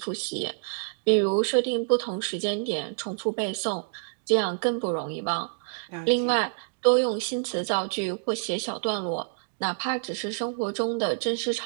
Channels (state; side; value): silent; left; digital silence